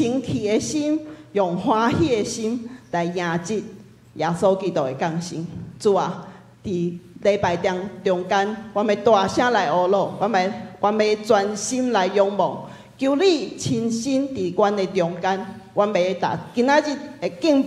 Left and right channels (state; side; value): identical; both; correlation 1.00